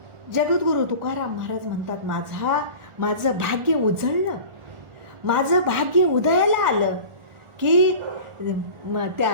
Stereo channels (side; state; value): left; late; 1.4 ms